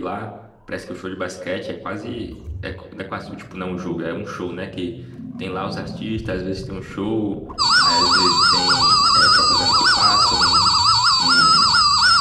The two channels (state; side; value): identical; both; correlation 1.00